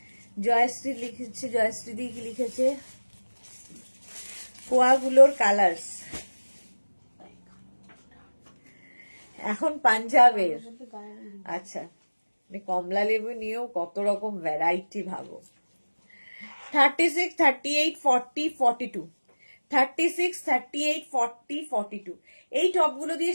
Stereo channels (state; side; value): inverted; both; correlation -1.00